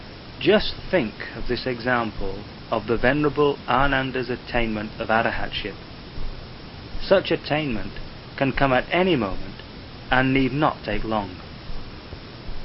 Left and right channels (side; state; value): both; identical; correlation 1.00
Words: Just think of this example of the Venerable Ananda's attainment of Arahatship. Such attainment can come at any moment and need not take long.